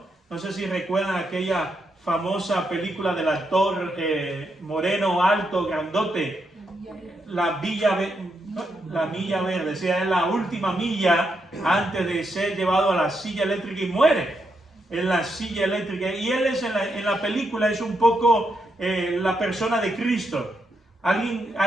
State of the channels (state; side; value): normal; both; correlation 0.81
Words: No sé si recuerdan aquella famosa película del actor moreno, alto, grandote, la Milla Verde, o sea, es la última milla antes de ser llevado a la silla eléctrica y muere en la silla eléctrica. Y él es en la película es un poco la persona de Cristo.